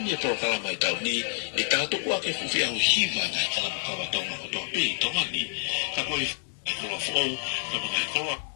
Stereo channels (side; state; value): right; silent; 59 dB below the other